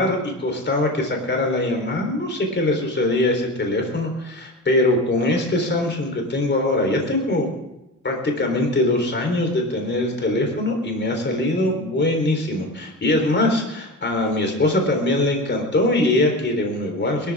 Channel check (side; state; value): both; normal; correlation 0.27